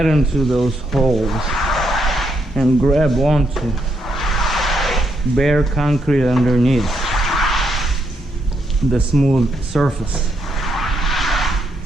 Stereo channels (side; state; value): both; normal; correlation 0.77